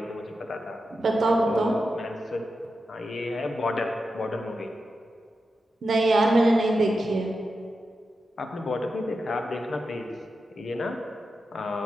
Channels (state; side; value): normal; both; correlation 0.89